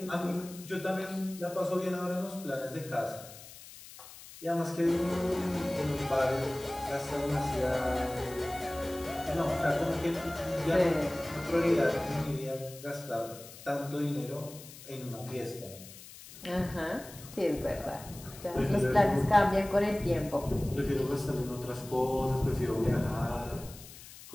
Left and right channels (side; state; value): left; noise; hiss, 17 dB below the sound